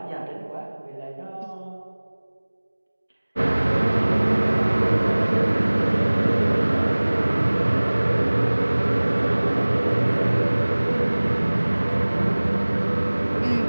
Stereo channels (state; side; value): inverted; both; correlation -1.00